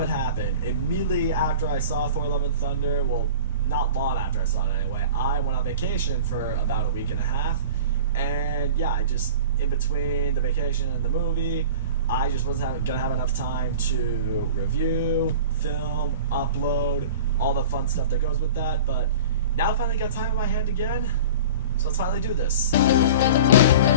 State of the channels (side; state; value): both; inverted; correlation -0.37